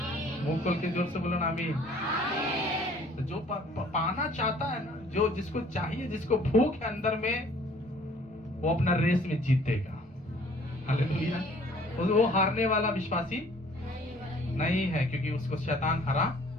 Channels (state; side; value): normal; both; correlation 0.55